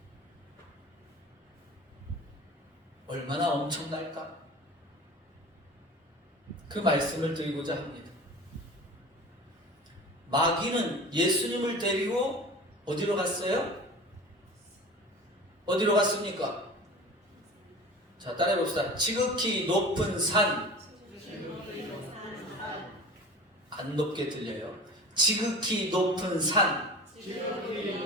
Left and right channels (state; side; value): normal; both; correlation 0.37